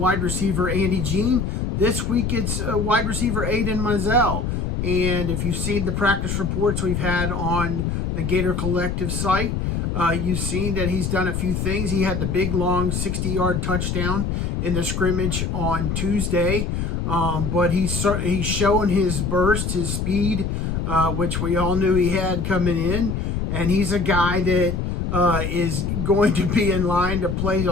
receiver Andy Jean. This week it's wide receiver Aiden Mizell. And if you've seen the practice reports we've had on the Gator Collective site, you've seen that he's done a few things. He had the big, long 60-yard touchdown in the scrimmage on Tuesday. But he's showing his burst, his speed, which we all knew he had coming in. And he's a guy that is going to be in line to play a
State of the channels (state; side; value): noise; left; rumble, 1 dB below the sound